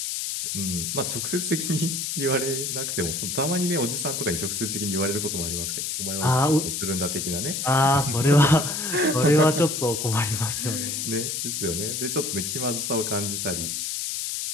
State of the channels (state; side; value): noise; left; hiss, 2 dB below the sound